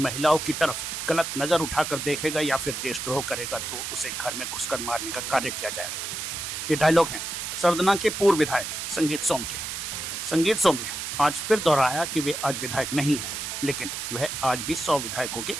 की तरफ गलत नजर उठाकर देखेगा या फिर देशद्रोह करेगा तो उसे घर में घुसकर मारने का कार्य किया जाएगा। ये डायलॉग हैं सरदना के पूर्व विधायक संगीत सोम के। संगीत सोम ने आज फिर दोहराया कि वे आज विधायक नहीं है, लेकिन वह आज भी 100 विधायकों के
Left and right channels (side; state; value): right; noise; hiss, 5 dB below the sound